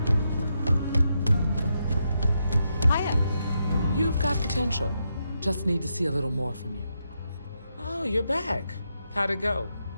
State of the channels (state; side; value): inverted; both; correlation -0.83